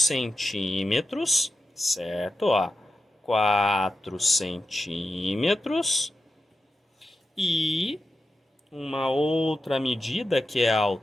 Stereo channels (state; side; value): normal; both; correlation 0.90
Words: certo? Ó, 4 centímetros. E uma outra medida que é a